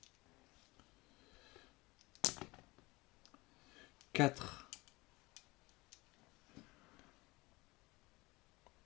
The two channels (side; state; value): right; quieter; 22.9 dB